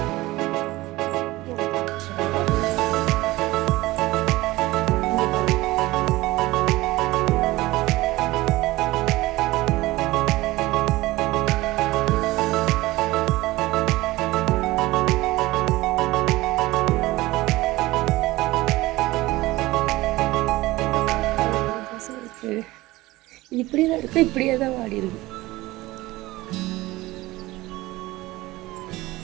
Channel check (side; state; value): left; quieter; 19.0 dB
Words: இப்படி தான் இருக்கு, இப்படியே தான் வாடி இருக்கு.